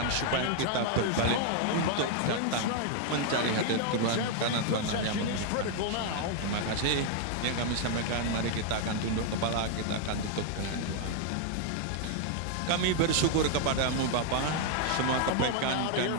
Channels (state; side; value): different; both; correlation 0.00